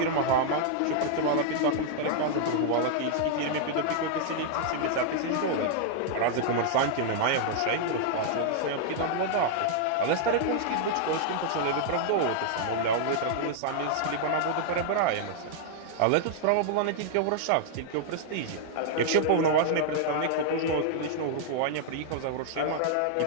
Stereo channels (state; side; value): different; both; correlation -0.01